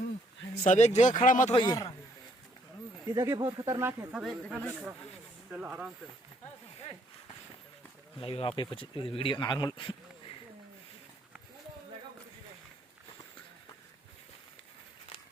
सब एक जगह खड़ा मत होइए। ये जगह बहुत खतरनाक है, सब एक जगह नहीं खड़ा। चलो आराम से लाइव आप वीडियो नॉर्मल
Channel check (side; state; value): both; normal; correlation 0.68